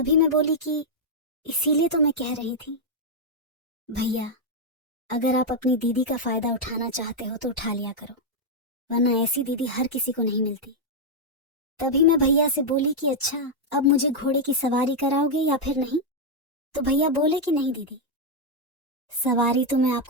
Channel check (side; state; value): both; normal; correlation -0.02